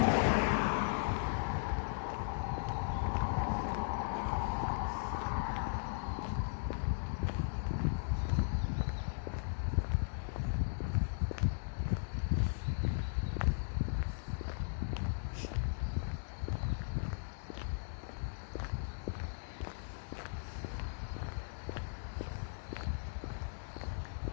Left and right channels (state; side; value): silent; right; digital silence